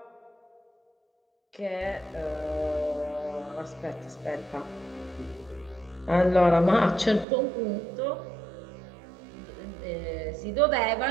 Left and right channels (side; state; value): left; drops out; at 7.2 s